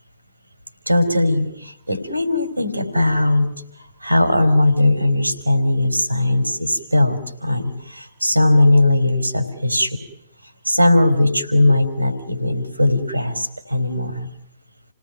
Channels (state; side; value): inverted; both; correlation -0.93